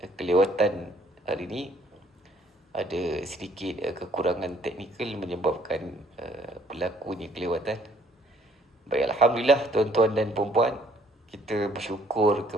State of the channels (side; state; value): both; normal; correlation 0.62